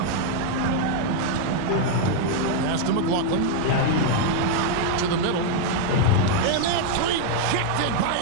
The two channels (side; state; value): both; different; correlation 0.00